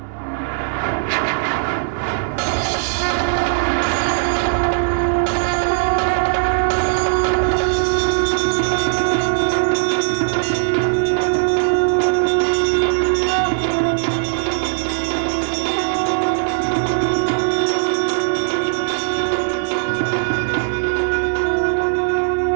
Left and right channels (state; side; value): silent; left; 67 dB below the other